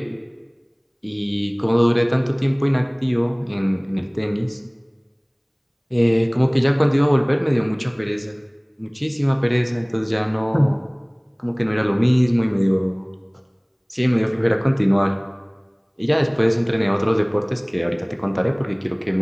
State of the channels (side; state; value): both; identical; correlation 1.00